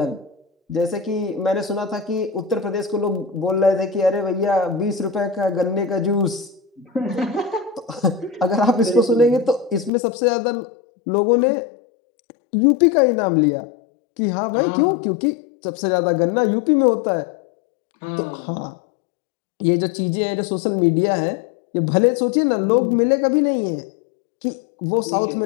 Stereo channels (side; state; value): right; drops out; at 9.9 s